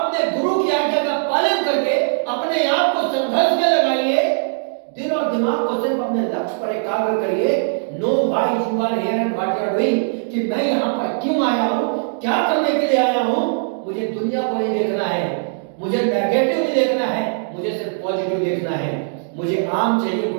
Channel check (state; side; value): silent; left; digital silence